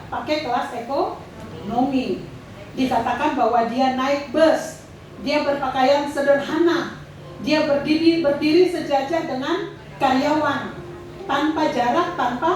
pakai kelas ekonomi. Dikatakan bahwa dia naik bus, dia berpakaian sederhana, dia berdiri sejajar dengan karyawan, tanpa jarak,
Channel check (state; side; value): identical; both; correlation 1.00